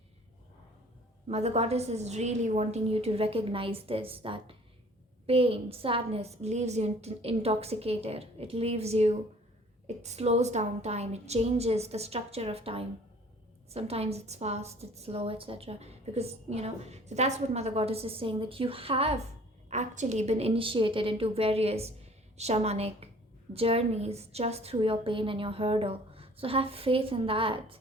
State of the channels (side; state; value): both; normal; correlation 0.52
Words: Mother Goddess is really wanting you to recognize this, that pain, sadness leaves you intoxicated. It slows down time, it changes the structure of time. Sometimes it's fast, it's slow, etc. Because, so that's what Mother Goddess is saying, that you have actually been initiated into various shamanic journeys just through your pain and your hurdle. So have faith in that.